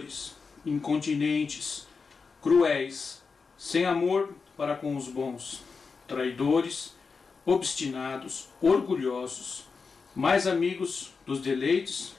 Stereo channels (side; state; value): right; quieter; 4.9 dB